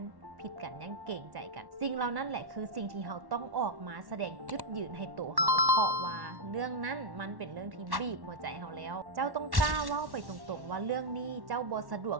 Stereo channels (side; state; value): left; late; 1.1 ms